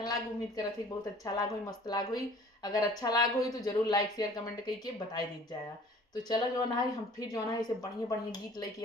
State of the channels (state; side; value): normal; both; correlation 0.50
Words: लाग, उम्मीद करत थी बहुत अच्छा लाग हुई, मस्त लाग हुई। अगर अच्छा लाग हुई तो जरूर लाइक शेयर कमेंट करके बताई दी जाए। तो चलो जो है हम फिर जो है इसे बढ़िया बढ़िया गीत लेके